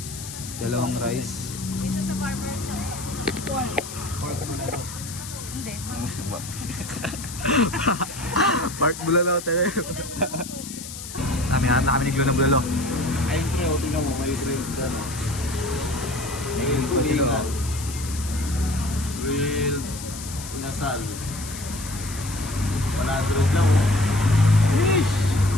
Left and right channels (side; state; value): left; noise; hiss, 11 dB below the sound